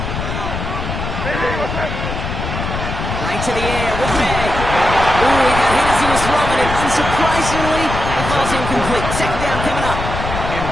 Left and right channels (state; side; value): noise; left; rumble, 5 dB below the sound